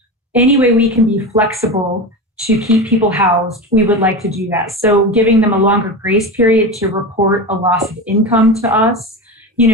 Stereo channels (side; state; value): both; normal; correlation 0.24